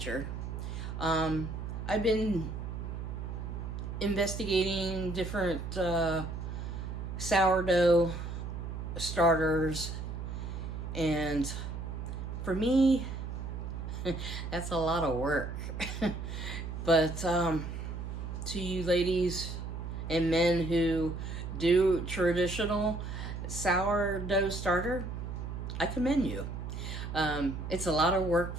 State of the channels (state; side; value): noise; right; hum, 6 dB below the sound